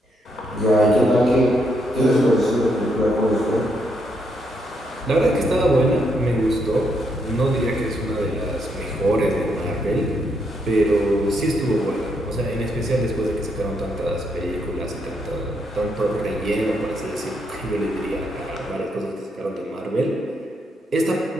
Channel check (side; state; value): both; normal; correlation 0.77